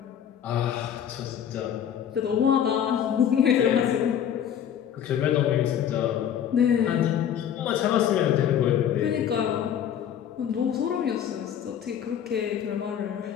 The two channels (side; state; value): right; quieter; 9.4 dB